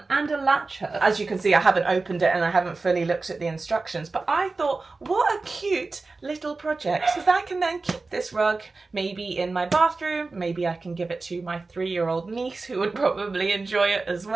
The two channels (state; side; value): quieter; left; 3.7 dB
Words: and a latch hook. As you can see, I haven't opened it and I haven't fully looked at the instructions, but I thought, what a cute little project, because I can then keep this rug maybe in my bathroom. Maybe I can give it to my 3-year-old niece who would probably enjoy it as